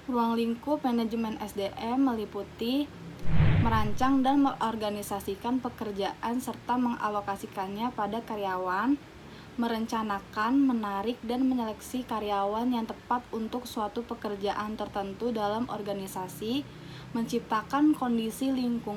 Ruang lingkup manajemen SDM meliputi merancang dan mengorganisasikan pekerjaan serta mengalokasikannya pada karyawan, merencanakan, menarik, dan menyeleksi karyawan yang tepat untuk suatu pekerjaan tertentu dalam organisasi, menciptakan kondisi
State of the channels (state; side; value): identical; both; correlation 1.00